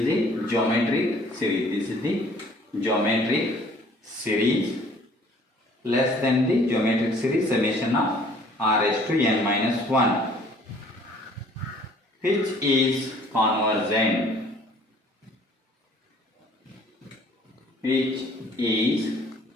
the geometric series. This is the geometric series less than the geometric series summation of r raised to n minus 1, which is convergent, which is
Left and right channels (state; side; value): normal; both; correlation 0.55